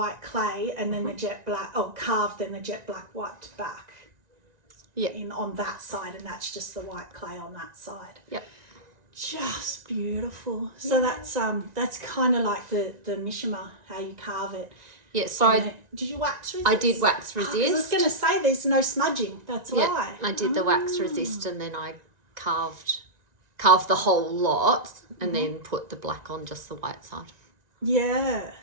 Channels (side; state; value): left; late; 1.9 ms